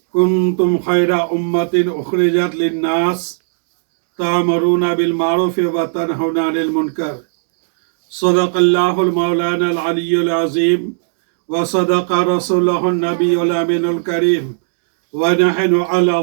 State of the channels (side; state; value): left; silent; digital silence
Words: كنتم خير أمة أخرجت للناس تأمرون بالمعروف وتنهون عن المنكر صدق الله المولانا العلي العظيم وصدق رسوله النبي الأمين الكريم ونحن على